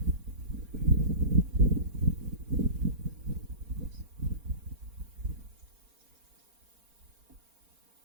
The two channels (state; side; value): late; left; 4.3 ms